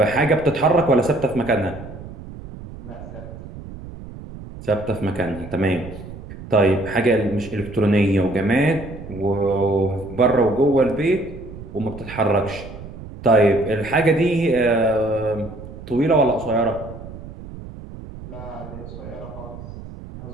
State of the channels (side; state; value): right; noise; rumble, 13 dB below the sound